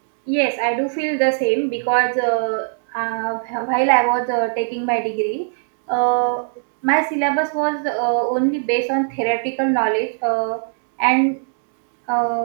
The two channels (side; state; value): left; silent; digital silence